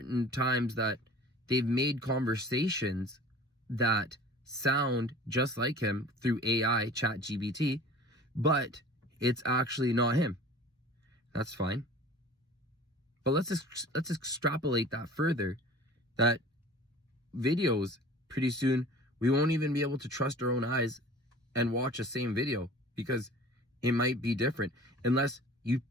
times that they've made conversations that sound just like him through AI, ChatGPT, but it's actually not him. That's fine. But let's extrapolate that further, that videos, pretty soon we won't even be able to trust our own eyes and watch the same video, because it might be different. Unless you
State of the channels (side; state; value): both; normal; correlation 0.44